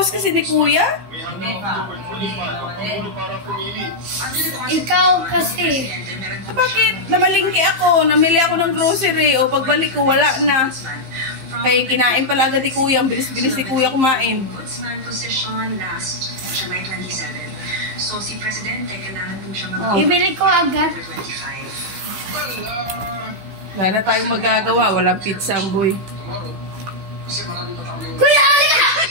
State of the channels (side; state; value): left; late; 15 ms